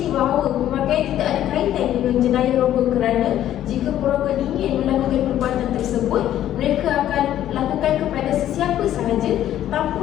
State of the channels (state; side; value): quieter; right; 12.0 dB